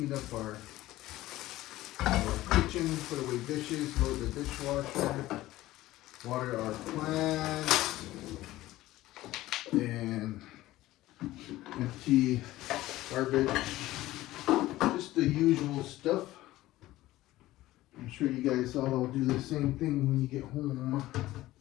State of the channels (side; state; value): right; quieter; 16.4 dB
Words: up our kitchen, put away dishes, load the dishwasher, water our plants, and empty garbage. Just the usual stuff. I'm sure you guys all do the same thing when you get home.